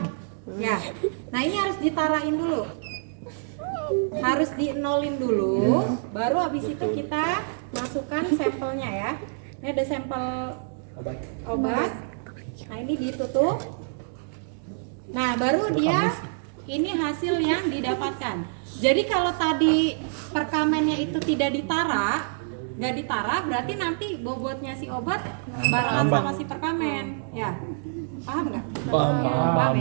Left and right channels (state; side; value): silent; left; digital silence